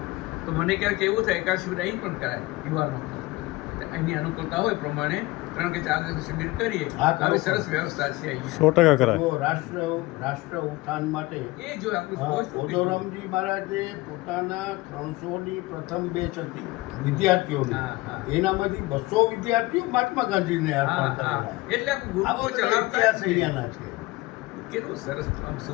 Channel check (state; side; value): quieter; right; 20.9 dB